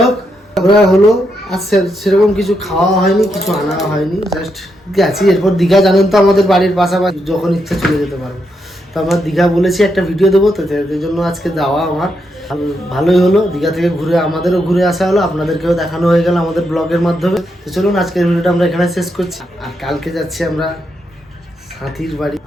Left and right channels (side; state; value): both; normal; correlation 0.81